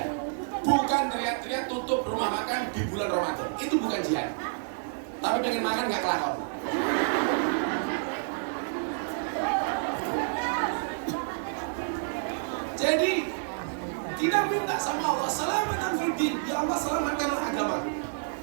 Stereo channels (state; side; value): silent; left; digital silence